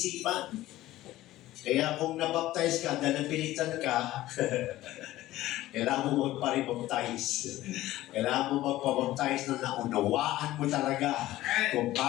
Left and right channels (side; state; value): right; quieter; 15.8 dB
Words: Kaya kung nabaptize ka, dahil napilitan ka, kailangan mo magparibaptize. Kailangan mo magpabaptize na naunawaan mo talaga kung